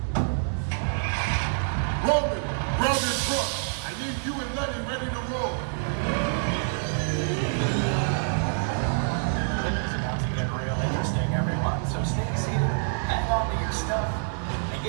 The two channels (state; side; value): silent; left; digital silence